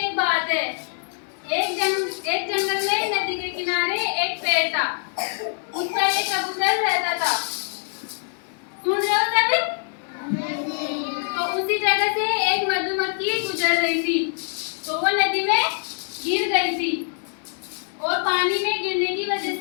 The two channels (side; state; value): right; silent; 60 dB below the other